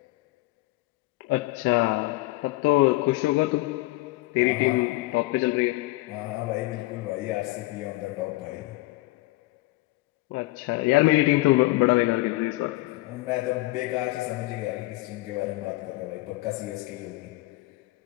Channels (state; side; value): quieter; right; 19.9 dB